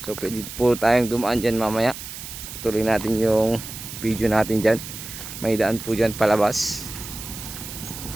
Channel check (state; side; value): noise; right; hiss, 11 dB below the sound